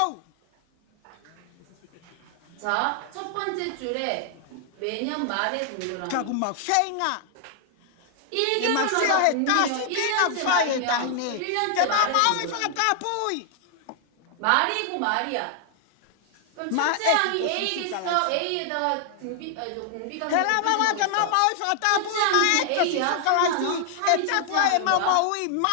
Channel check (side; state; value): both; different; correlation 0.00